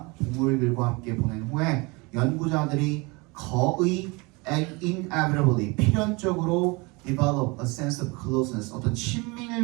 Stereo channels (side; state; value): left; quieter; 26.8 dB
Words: 동물들과 함께 보낸 후에 연구자들이 거의 inevitably 필연적으로 develop a sense of closeness 어떤